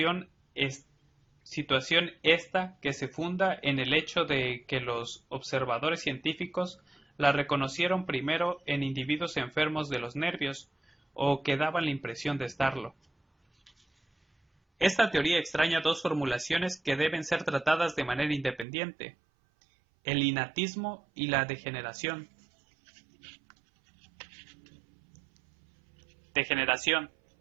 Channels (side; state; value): left; drops out; at 18.7 s